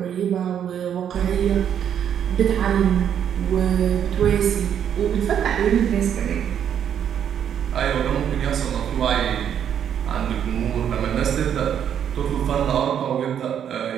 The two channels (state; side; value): quieter; left; 9.0 dB